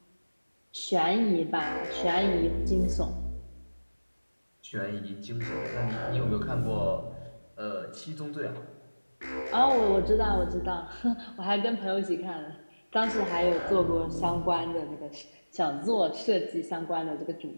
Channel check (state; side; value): inverted; both; correlation -1.00